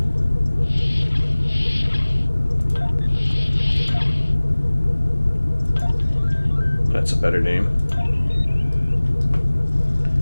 That's a better name.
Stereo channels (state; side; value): inverted; both; correlation -1.00